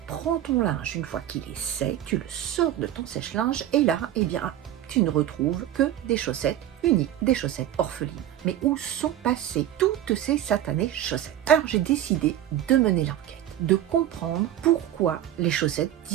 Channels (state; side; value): quieter; left; 12.0 dB